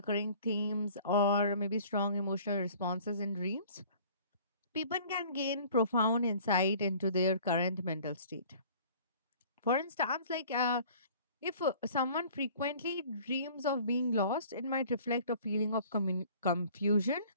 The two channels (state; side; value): inverted; both; correlation -0.50